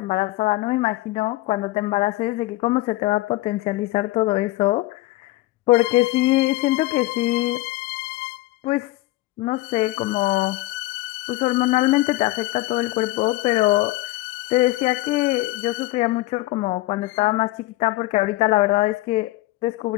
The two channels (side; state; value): right; quieter; 19.0 dB